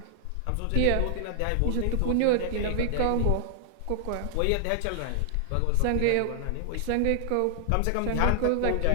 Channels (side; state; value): both; different; correlation -0.01